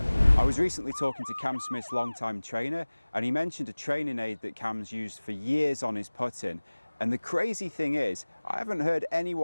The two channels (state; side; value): inverted; both; correlation -1.00